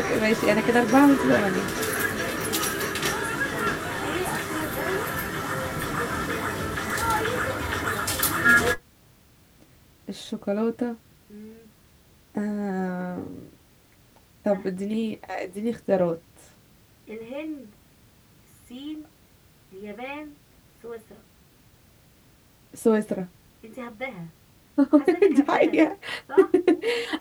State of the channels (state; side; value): identical; both; correlation 1.00